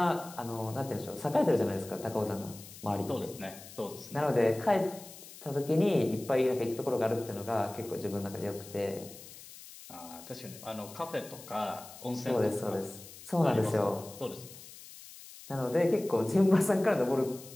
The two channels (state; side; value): noise; left; hiss, 17 dB below the sound